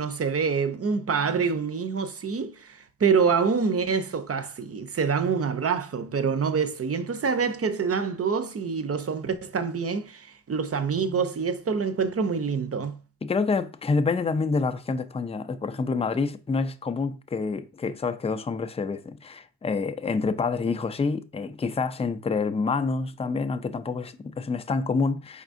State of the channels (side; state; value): both; normal; correlation 0.34